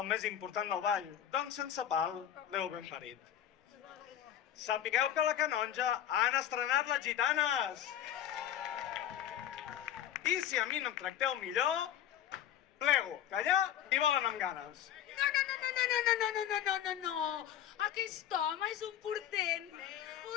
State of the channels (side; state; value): right; quieter; 10.6 dB